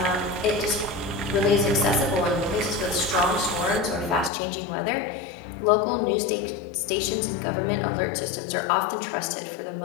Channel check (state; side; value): drops out; right; at 4.3 s